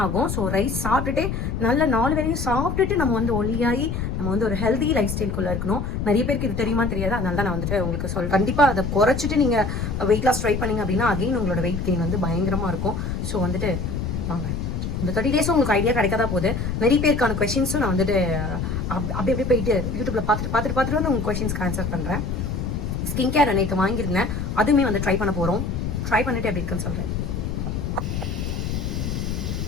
ஆகும். ஸோ ரைஸ் சாப்பிட்டுட்டே நல்ல 4 வேளையும் சாப்பிட்டுட்டு நம்ம வந்து ஒல்லியாகி நம்ம வந்து ஒரு ஹெல்தி லைஃப் ஸ்டைல்குள்ள இருக்கணும். நிறைய பேருக்கு இது தெரியுமா தெரியாது. அதனால தான் நான் வந்துட்டு உங்களுக்கு சொல்றேன். கண்டிப்பா அதை குறைச்சிட்டு நீங்க வெயிட் லாஸ் ட்ரை பண்ணீங்க அப்படின்னா அகைன் உங்களோட வெயிட் கெயின் வந்து பயங்கரமா இருக்கும். ஸோ வந்துட்டு வாங்க, இந்த 30 டேஸும் உங்களுக்கு ஐடியா கிடைக்காதா போகுது. நிறைய பேருக்கான கொஸ்டின்ஸும் நான் வந்துட்டு அப்படியே போயிட்டு யூடியூப்ல பார்த்துட்டு வந்து உங்க கொஸ்டின்ஸ்க்கு ஆன்சர் பண்றேன். ஸ்கின் கேர் நேற்று வாங்கியிருந்தேன். அதுவுமே வந்து ட்ரை பண்ண போறோம். ட்ரை பண்ணிட்டு எப்படி இருக்குன்னு சொல்றேன்.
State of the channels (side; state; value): left; noise; rumble, 3 dB below the sound